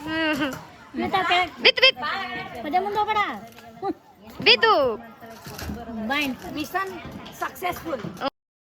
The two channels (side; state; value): both; identical; correlation 1.00